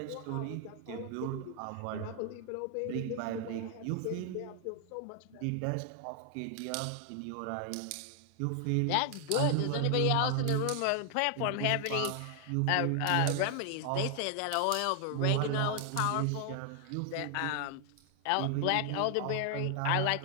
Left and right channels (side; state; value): both; different; correlation 0.00